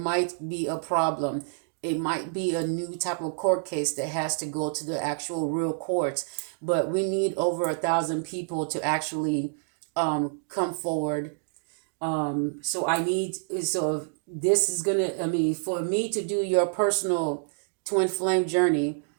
be a problem. It might be a new type of court case that has to go to the actual real courts, but we need over 1,000 people to actually come forward. So this is gonna, I mean, for me to do your personal twin flame journey,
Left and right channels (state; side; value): silent; left; digital silence